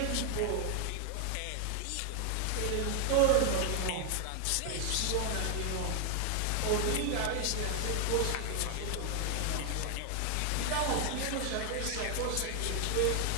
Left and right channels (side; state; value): both; different; correlation 0.00